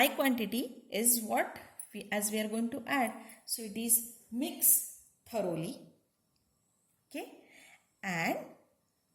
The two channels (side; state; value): both; identical; correlation 1.00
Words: quantity is what as we are going to add. So it is mix thoroughly. Okay, and